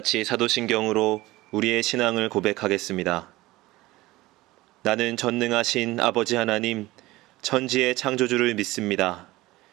사도신경으로 우리의 신앙을 고백하겠습니다. 나는 전능하신 아버지 하나님, 천지의 창조주를 믿습니다.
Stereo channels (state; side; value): quieter; left; 18.9 dB